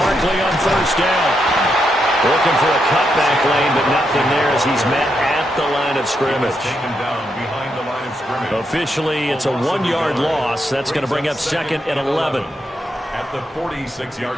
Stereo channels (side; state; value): both; normal; correlation 0.81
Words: on first down. Looking for a cutback lane, but nothing there as he's met at the line of scrimmage. Officially, it's a 1-yard loss. That's going to bring up 2nd and 11. At the